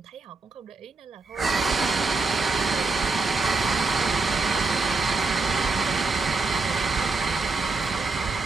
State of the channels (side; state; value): left; quieter; 3.7 dB